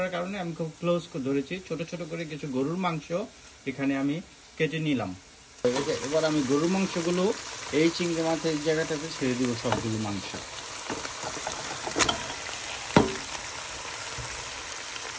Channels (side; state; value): both; identical; correlation 1.00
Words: কারণে আমি খুব ক্লোজ করে ধরেছি, ছোট ছোট করে কিছু গরুর মাংস এখানে আমি কেটে নিলাম। এবার আমি গরুর মাংসগুলো এই চিংড়ি মাছের জায়গাটাতে ছেড়ে দিব। সবগুলো মাংস